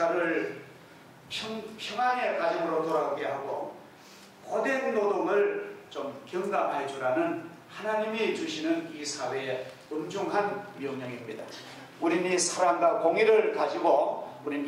평안의 가정으로 돌아오게 하고 고된 노동을 좀 경감해 주라는 하나님이 주시는 이 사회의 엄중한 명령입니다. 우리는 이 사랑과 공의를 가지고 우리는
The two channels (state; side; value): identical; both; correlation 1.00